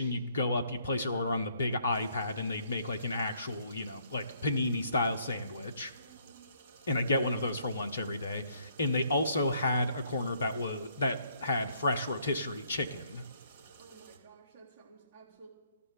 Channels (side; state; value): both; inverted; correlation -0.67